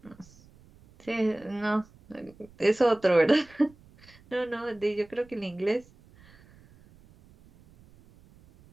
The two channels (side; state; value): right; noise; rumble, 26 dB below the sound